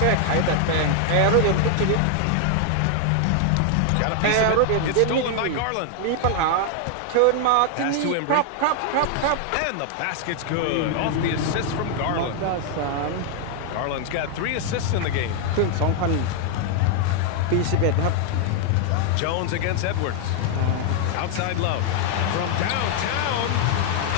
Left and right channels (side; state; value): both; different; correlation 0.00